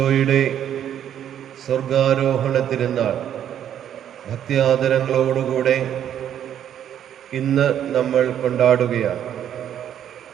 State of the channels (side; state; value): left; quieter; 10.0 dB